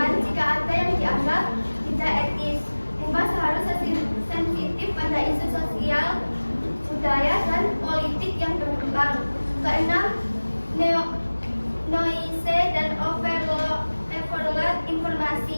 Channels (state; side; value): inverted; both; correlation -1.00